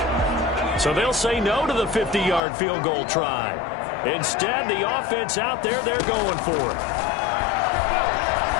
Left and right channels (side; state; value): right; drops out; at 2.4 s